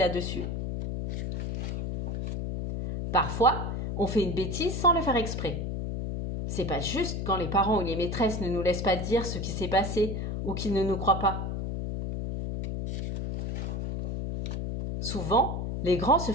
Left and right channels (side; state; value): left; noise; hum, 3 dB below the sound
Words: Parfois, on fait une bêtise sans le faire exprès. C'est pas juste quand les parents ou les maîtresses ne nous laissent pas dire ce qui s'est passé ou qu'ils ne nous croient pas. Souvent, les grands se